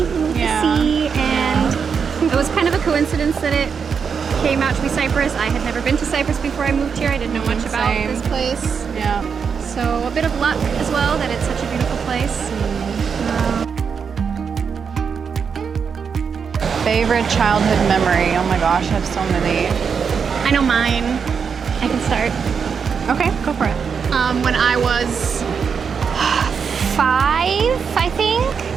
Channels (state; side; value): quieter; left; 6.3 dB